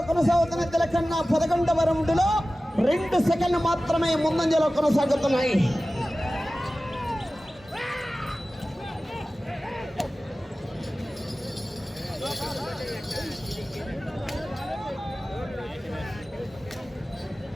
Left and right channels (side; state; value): both; normal; correlation 0.96